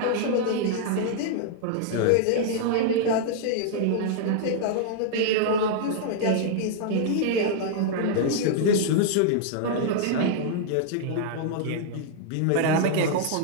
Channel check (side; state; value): both; different; correlation -0.01